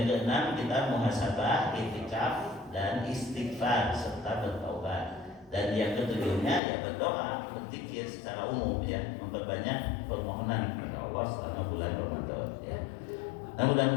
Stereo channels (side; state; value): right; drops out; at 6.6 s